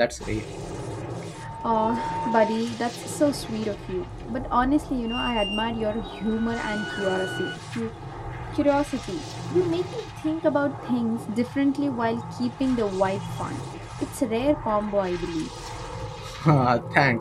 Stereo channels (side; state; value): both; identical; correlation 1.00